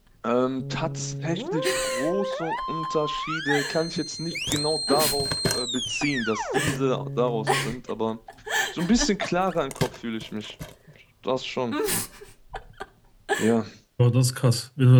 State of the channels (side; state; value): both; identical; correlation 1.00